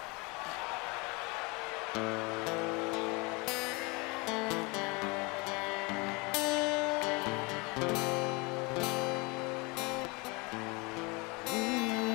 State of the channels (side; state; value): right; quieter; 27.6 dB